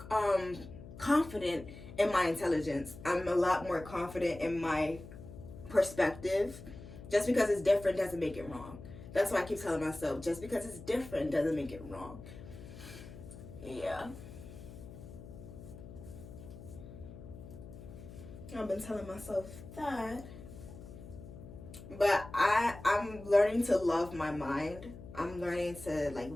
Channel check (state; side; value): noise; left; hum, 14 dB below the sound